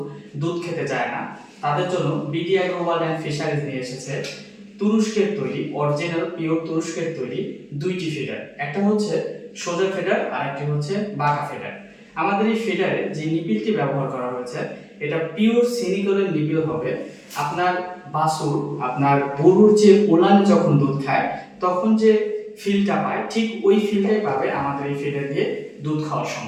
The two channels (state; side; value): identical; both; correlation 1.00